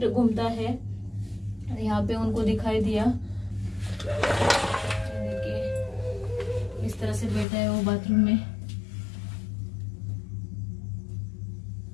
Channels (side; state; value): right; drops out; at 7.5 s